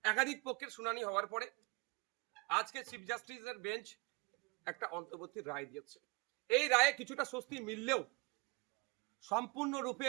একাধিক পক্ষের শুনানি হওয়ার পরে আজকে চিফ জাস্টিসের বেঞ্চ একটা অন্তর্বর্তী রায় দিয়েছে। এই রায়ে কিছুটা স্বস্তি মিললেও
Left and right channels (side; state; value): left; quieter; 27.4 dB